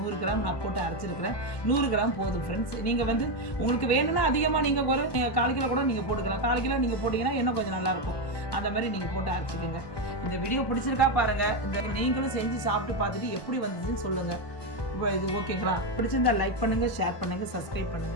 கிராம் நான் போட்டு அரைச்சிருக்கிறேன். 100 கிராம் போதும் ஃப்ரெண்ட்ஸ். நீங்கள் வந்து உங்களுக்கு வேணும்னா அதிகமாக நீங்கள் 1/4 கிலோ கூட நீங்கள் போட்டுக்கலாம். 1/4 கிலோ நீங்கள் போட்டிங்கன்னா இன்னும் கொஞ்சம் நல்லாயிருக்கும். அந்த மாதிரி நீங்கள் போட்டு அரைச்சிக்கோங்க. இந்த வீடியோ பிடிச்சிருக்கா பாருங்கள். இந்த நீங்களும் செஞ்சு சாப்பிட்டு பார்த்துட்டு எப்படி வந்ததுன்னு சொல்லுங்கள். இப்போ இது ஓகேங்களா? பிடிச்சிருந்தா லைக் பண்ணுங்கள், ஷேர் பண்ணுங்கள், சப்ஸ்கிரைப்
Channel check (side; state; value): right; late; 1.2 ms